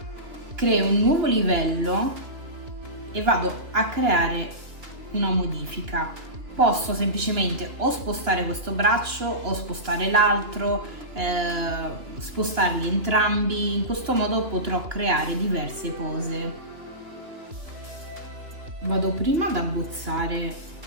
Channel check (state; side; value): late; left; 2.9 ms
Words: Creo un nuovo livello e vado a creare una modifica. Posso semplicemente o spostare questo braccio o spostare l'altro, spostarli entrambi. In questo modo potrò creare diverse pose. Vado prima ad abbozzare